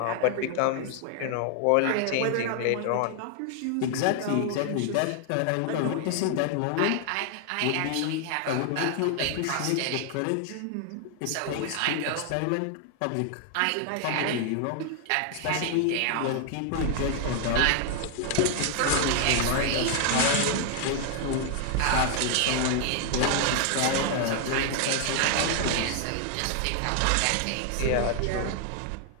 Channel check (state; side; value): different; both; correlation 0.00